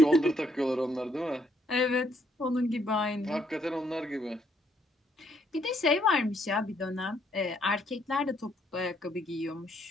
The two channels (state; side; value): normal; both; correlation 0.71